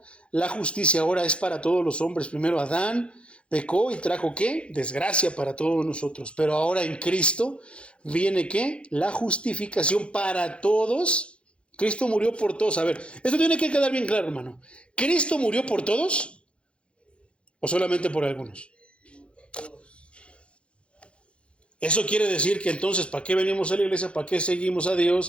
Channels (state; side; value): late; right; 0.059 ms